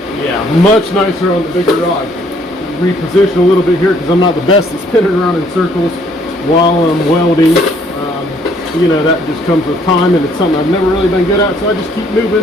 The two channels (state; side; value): normal; both; correlation 0.64